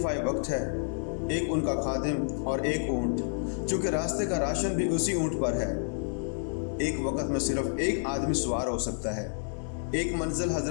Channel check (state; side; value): silent; right; 58 dB below the other